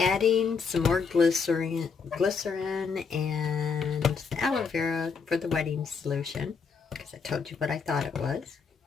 some more glycerin and aloe vera for the wedding solution, because I told you what I thought it was.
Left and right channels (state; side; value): quieter; right; 5.5 dB